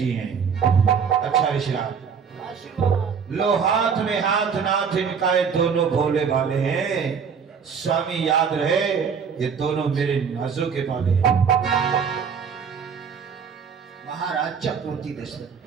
हैं। अच्छा ऋषिराज, लो हाथ में हाथ नाथ इनका, ये दोनों भोले भाले हैं। स्वामी याद रहे, ये दोनों मेरे नाजों के पाले हैं। महाराज चक्रवर्ती दशरथ,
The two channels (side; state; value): left; quieter; 6.5 dB